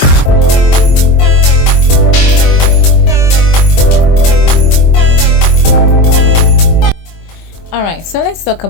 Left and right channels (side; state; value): right; late; 24 ms